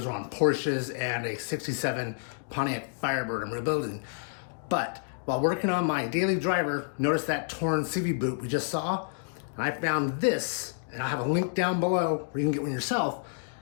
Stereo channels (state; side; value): silent; right; digital silence